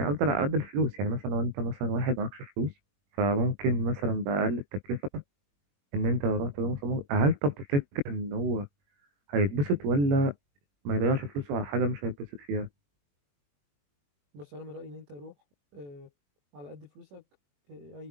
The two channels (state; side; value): late; left; 21 ms